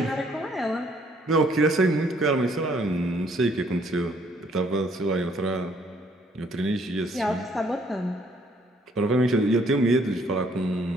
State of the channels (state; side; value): normal; both; correlation 0.64